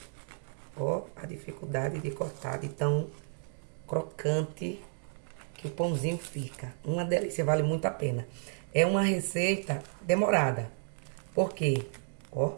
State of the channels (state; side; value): silent; left; digital silence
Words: Ó, a dificuldade de cortar de tão crocante que o pãozinho fica. Uma delícia, vale muito a pena. É uma receita demorada. Por quê? Ó.